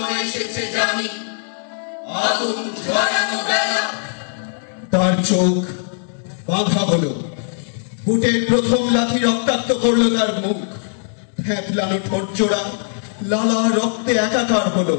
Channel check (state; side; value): silent; right; digital silence